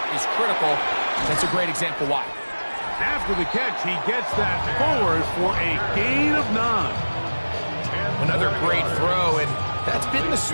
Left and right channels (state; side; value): inverted; both; correlation -1.00